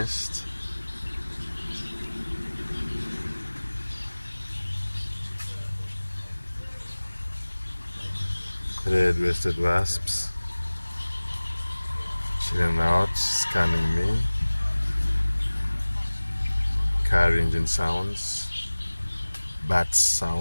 Red-waisted wasps chilling out, scanning me. Car engine sounds, bat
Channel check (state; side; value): inverted; both; correlation -1.00